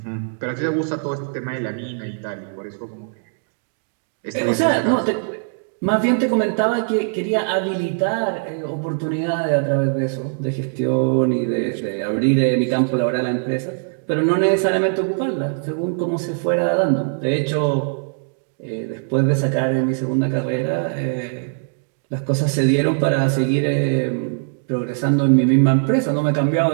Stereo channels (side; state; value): left; silent; digital silence